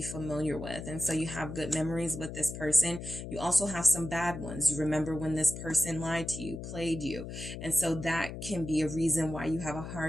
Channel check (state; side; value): noise; left; hum, 8 dB below the sound